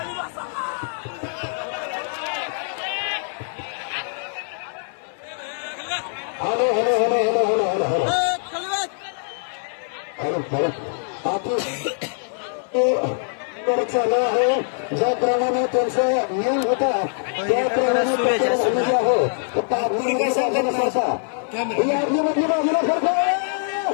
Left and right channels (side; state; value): right; silent; 58 dB below the other